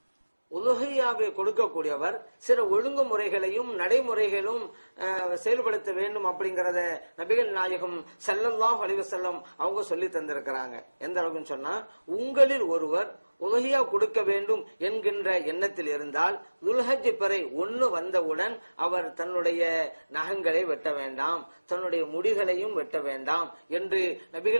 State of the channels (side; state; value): both; inverted; correlation -1.00